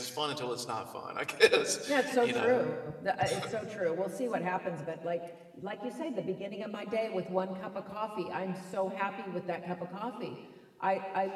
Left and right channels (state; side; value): identical; both; correlation 1.00